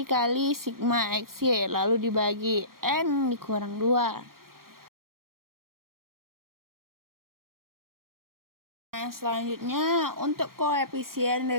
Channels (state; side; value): late; left; 0.92 ms